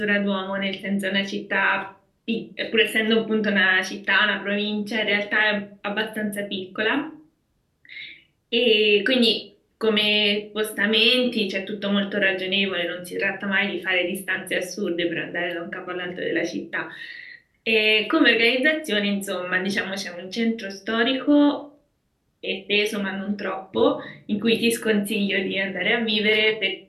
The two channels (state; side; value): identical; both; correlation 1.00